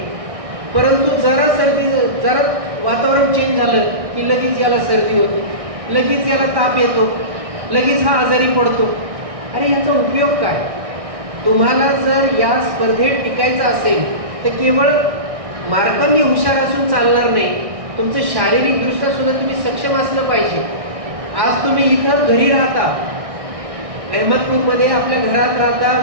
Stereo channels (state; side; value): late; left; 1.6 ms